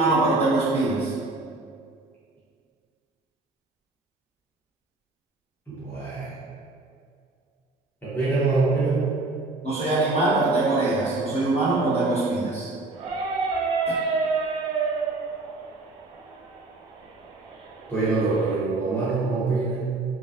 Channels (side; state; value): left; quieter; 3.0 dB